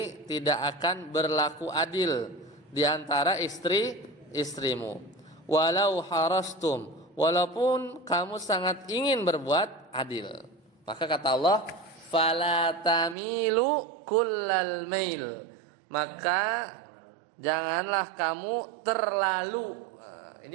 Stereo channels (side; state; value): left; drops out; at 13.2 s